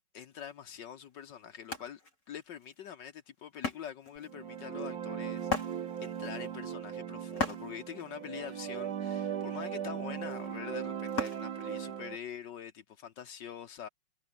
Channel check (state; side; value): late; right; 5.4 ms